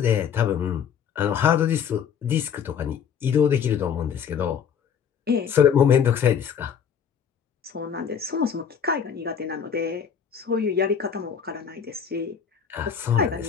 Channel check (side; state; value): right; quieter; 7.7 dB